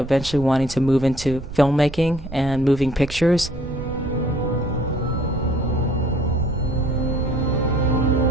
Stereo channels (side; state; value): right; noise; rumble, 13 dB below the sound